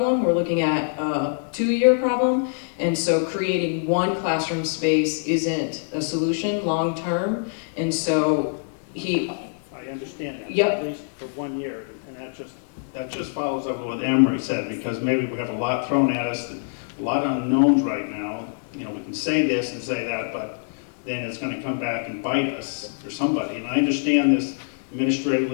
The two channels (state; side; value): silent; right; digital silence